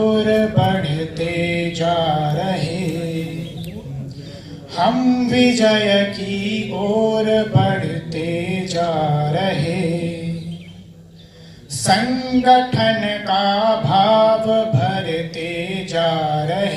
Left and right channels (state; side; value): identical; both; correlation 1.00